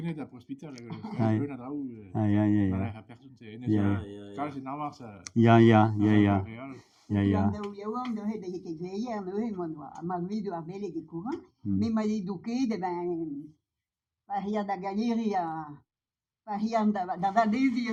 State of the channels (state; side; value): identical; both; correlation 1.00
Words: d'un hospital. Aia. Personne, c'est Navarre, ça. Ja. Ja, de he de ke gleier no he mon wa ma video a bele ke courant mais ma eduqué de ben paria da galeria paria da vadesi